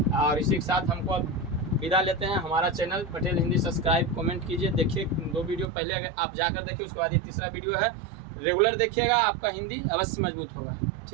और इसी के साथ हमको अब विदा लेते हैं। हमारा channel Patel Hindi subscribe, comment कीजिए। देखिए 2 वीडियो पहले अगर आप जाकर देखिए, उसके बाद ये तीसरा वीडियो है, रेगुलर देखिएगा, आपका हिंदी अवश्य मजबूत होगा।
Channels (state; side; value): drops out; left; at 5.7 s